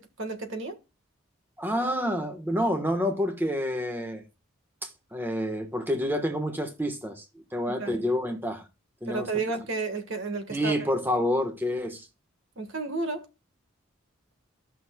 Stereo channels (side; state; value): both; normal; correlation 0.65